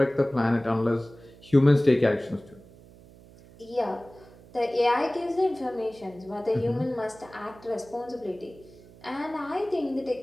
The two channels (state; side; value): noise; right; hum, 23 dB below the sound